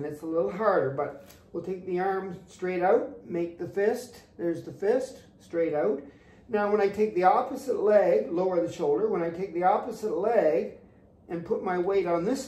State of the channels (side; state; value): both; identical; correlation 1.00